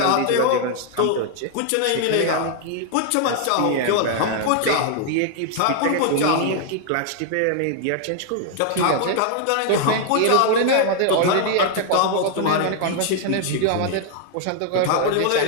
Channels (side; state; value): both; different; correlation 0.00